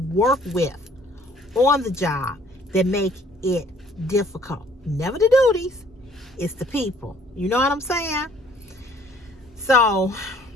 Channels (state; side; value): normal; both; correlation 0.58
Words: work with on the job that make it difficult. Never the duties, it's the people. You know what I'm saying? So